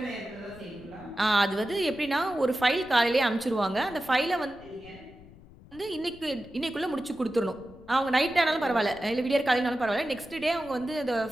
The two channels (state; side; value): noise; left; rumble, 22 dB below the sound